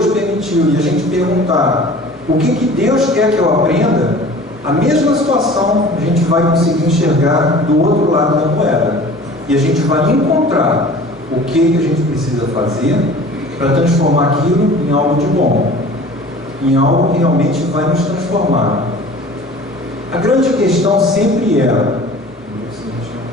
permitiu e a gente perguntar o que Deus quer que eu aprenda, a mesma situação a gente vai conseguir enxergar do outro lado da moeda. E a gente vai encontrar o que a gente precisa fazer para transformar aquilo em algo de bom, em algo que realmente vai nos transformar. A grande questão sempre é:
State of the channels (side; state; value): both; normal; correlation 0.44